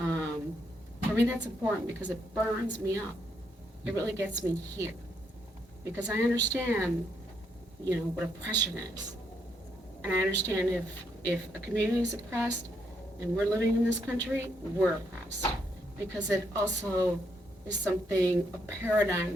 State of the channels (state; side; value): normal; both; correlation 0.76